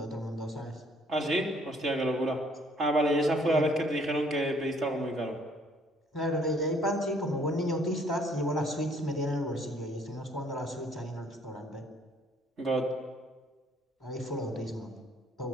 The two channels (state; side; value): normal; both; correlation 0.62